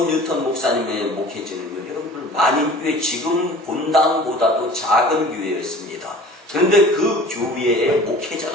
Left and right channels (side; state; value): both; normal; correlation 0.44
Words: 뉴턴 목사님의 목회지는요, 여러분들 만인교회 지금 본당보다도 작은 교회였습니다. 그런데 그 교회에